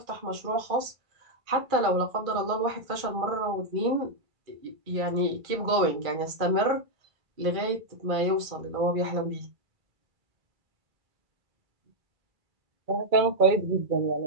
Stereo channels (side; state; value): left; late; 2.3 ms